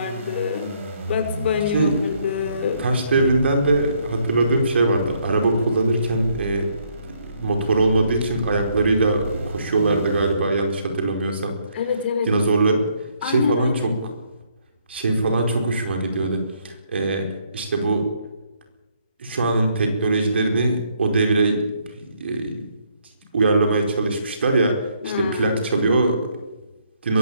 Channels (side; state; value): both; inverted; correlation -0.70